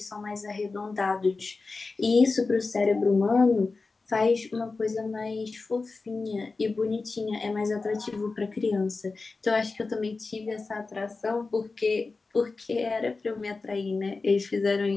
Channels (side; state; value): right; quieter; 3.9 dB